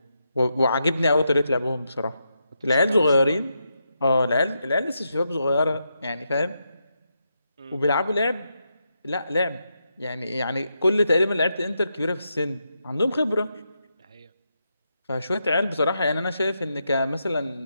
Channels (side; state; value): both; inverted; correlation -0.84